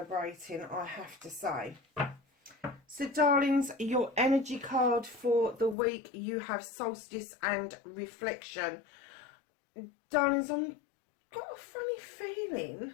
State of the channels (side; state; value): right; drops out; at 5.8 s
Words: I have to say. So, darlings, your energy card for the week, you have Solstice and Reflection. Darlings, I've got a funny